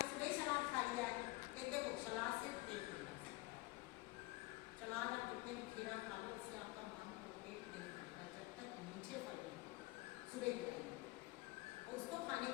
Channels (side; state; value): right; quieter; 21.8 dB